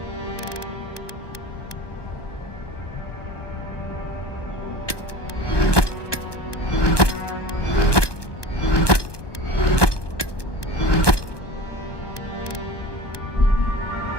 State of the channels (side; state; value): right; late; 1.2 ms